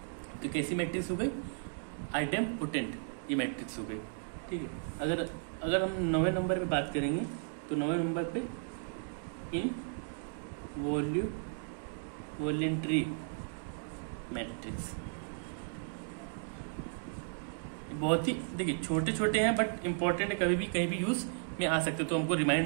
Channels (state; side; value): silent; left; digital silence